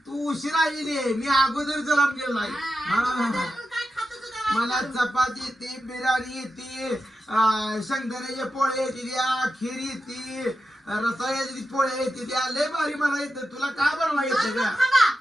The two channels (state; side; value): normal; both; correlation 0.90